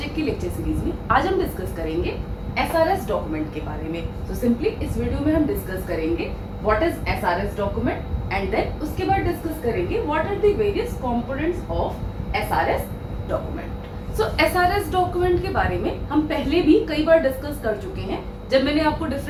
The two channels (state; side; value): identical; both; correlation 1.00